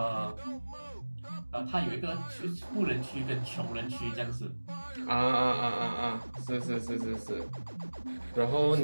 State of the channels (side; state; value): both; inverted; correlation -1.00